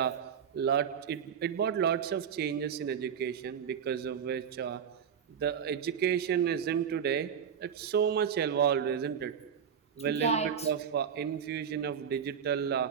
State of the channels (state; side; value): quieter; left; 7.7 dB